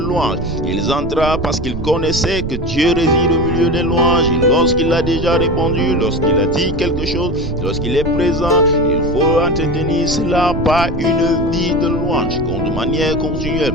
Ils entrèrent parce qu'ils connaissaient que Dieu réside au milieu des louanges. Et lorsqu'il a déjà répondu, lorsqu'il a dit quelque chose, lorsqu'il est présent, il faut entretenir cela par une vie de louange, de manière continuelle.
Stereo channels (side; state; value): right; noise; rumble, 8 dB below the sound